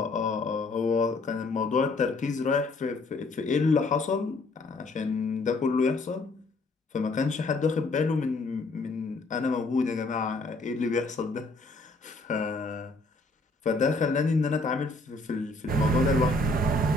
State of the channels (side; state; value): right; quieter; 3.0 dB